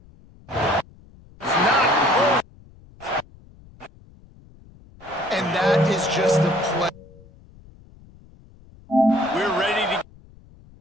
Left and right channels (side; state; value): left; noise; rumble, 24 dB below the sound